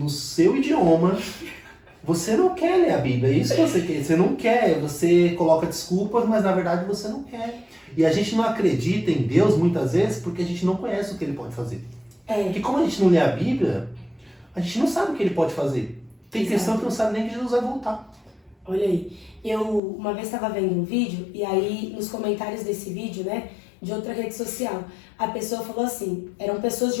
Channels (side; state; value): right; drops out; at 19.8 s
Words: seu idioma, você não quer ler a Bíblia, é isso que você quer. Você não quer, você coloca desculpas, mas na verdade você não quer. E a gente não acredita em Deus muitas vezes porque a gente não conhece o que Ele pode fazer. Porque como a gente não lê a Bíblia, a gente não sabe o que Ele pode fazer. Tem questão que não sabe nem que Jesus vai voltar. Olha aí, eu uma vez estava vendo um vídeo, e aí nos comentários desse vídeo, né, de outra rede social, a pessoa falou assim, eram pessoas